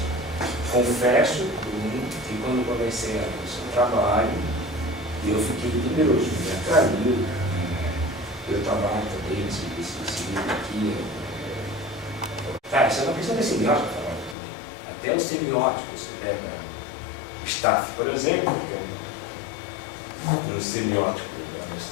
Confesso que quando comecei a ver o seu trabalho, eu fiquei temeroso, me atraiu. Eu trabalho também nesse livro aqui. Cara, isso é uma questão de semiótica, até os semióticos, você pega o Staff, por exemplo, que é um semiótico da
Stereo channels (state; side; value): drops out; right; at 14.4 s